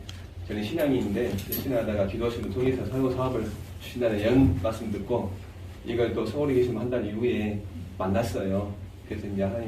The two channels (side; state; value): both; identical; correlation 1.00